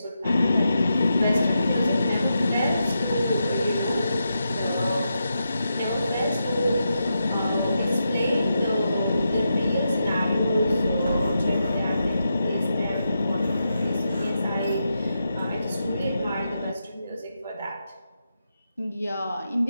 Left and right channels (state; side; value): inverted; both; correlation -0.86